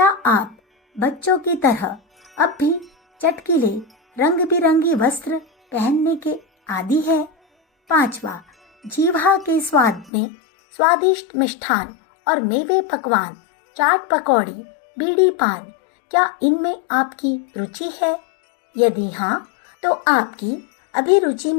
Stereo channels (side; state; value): right; drops out; at 10.1 s